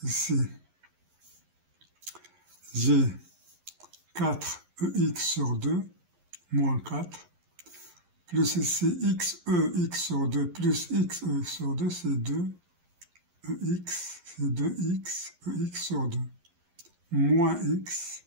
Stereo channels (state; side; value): late; left; 11 ms